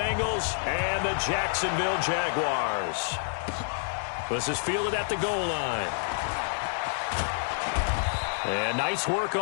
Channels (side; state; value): right; silent; digital silence